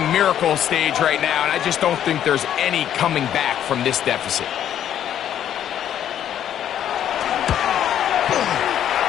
miracle stage right now, and I just don't think there's any coming back from this deficit.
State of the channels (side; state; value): right; quieter; 10.3 dB